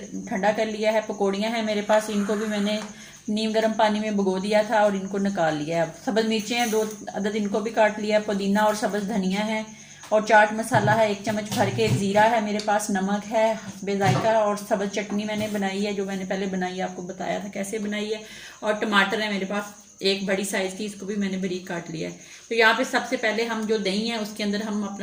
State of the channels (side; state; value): both; identical; correlation 1.00